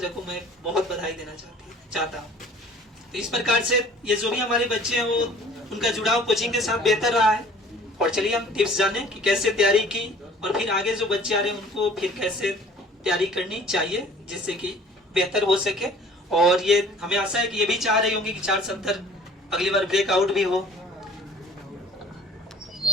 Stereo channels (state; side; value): normal; both; correlation 0.50